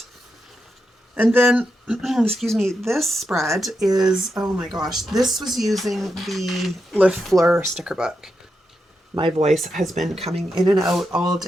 And then, excuse me, this spread is, oh my gosh, this was using the Le Fleur sticker book. My voice has been coming in and out all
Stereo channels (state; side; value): normal; both; correlation 0.86